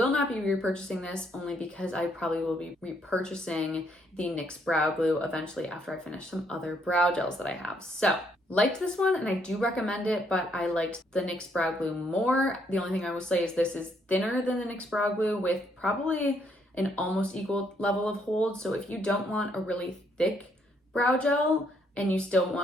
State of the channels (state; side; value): normal; both; correlation 0.71